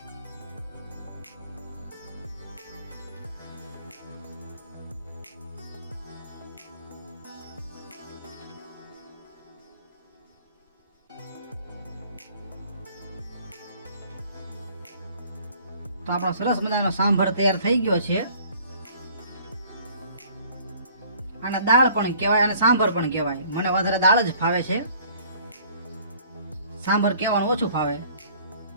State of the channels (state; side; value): inverted; both; correlation -0.55